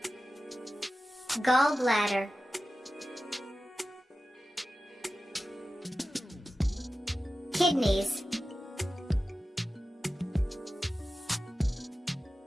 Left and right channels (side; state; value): both; normal; correlation 0.94